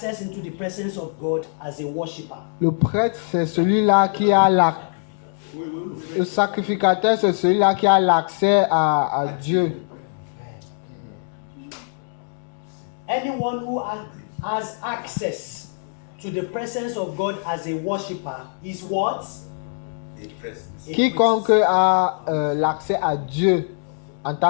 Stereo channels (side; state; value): right; silent; digital silence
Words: into the presence of God as a worshipper. Le prêtre, c'est celui-là qui a le sacrificateur, c'est celui-là qui a l'accès à Dieu. Anyone who has access to the presence of God as a worshipper is what? A Quiconque priest. a l'accès à Dieu en